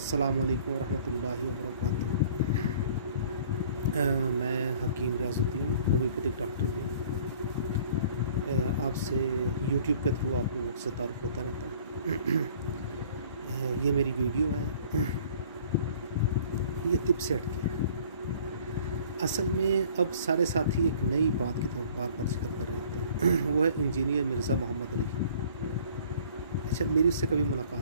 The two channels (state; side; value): inverted; both; correlation -0.52